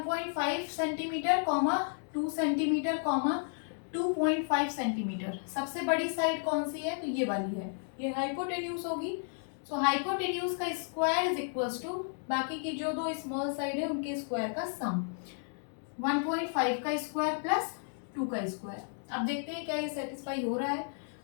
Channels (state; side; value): silent; right; 56 dB below the other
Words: सेंटीमीटर, 2 सेंटीमीटर, 2.5 सेंटीमीटर। सबसे बड़ी साइड कौन सी है, तो ये वाली है, ये हाइपोटेन्यूज होगी। सो हाइपोटेन्यूज का स्क्वायर इज इक्वल्स टू बाकी की जो दो स्मॉल साइड है उनके स्क्वायर का सम, 1.5 का स्क्वायर प्लस 2 का स्क्वायर। अब देखते हैं क्या ये सेटिस्फाई हो रहा है।